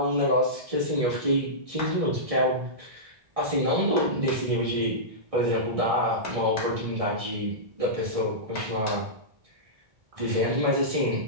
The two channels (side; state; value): left; late; 1.6 ms